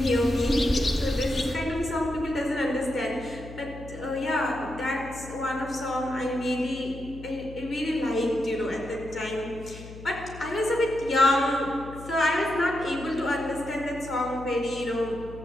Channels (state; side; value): noise; left; hum, 14 dB below the sound